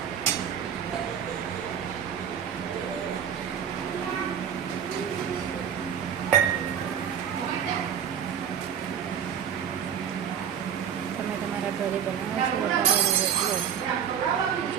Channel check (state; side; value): quieter; left; 8.4 dB